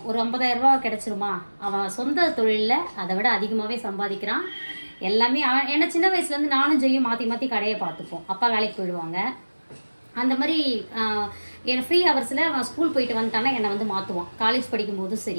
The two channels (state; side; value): inverted; both; correlation -1.00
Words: ஒரு 50,000 ரூபா கிடச்சிருமா. அவன் சொந்த தொழிலில் அதை விட அதிகமாகவே சம்பாதிக்கிறான். எல்லாமே ஏன்னா சின்ன வயசுலேருந்து நானும் ஜெய்யும் மாற்றி மாற்றி கடையை பார்த்துப்போம். அப்பா வேலைக்கு போயிடுவாங்க. அந்த மாதிரி என் ஃப்ரீ ஹவர்ஸில் அவன் ஸ்கூல் போயிட்டு வந்துட்டானா என்னை வந்து மாற்றுவான். காலேஜ் படிக்கும் போதும்